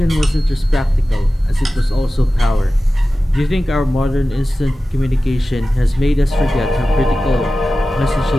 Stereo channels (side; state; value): both; normal; correlation 0.95